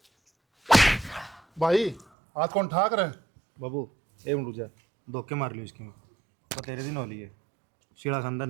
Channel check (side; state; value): left; drops out; at 2.1 s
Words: भाई हाथ कौन ठाक रहे? बाबू एक मिनट रुक जा, धोखे मार लियो इसकी मैं तो तेरे दिन हो लिए शीला खानदान